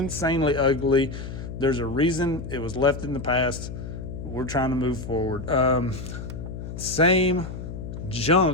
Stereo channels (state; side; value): noise; left; hum, 8 dB below the sound